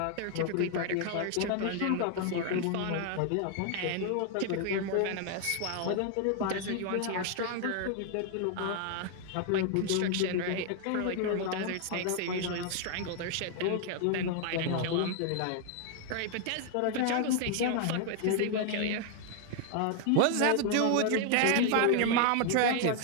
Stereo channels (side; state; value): both; different; correlation 0.00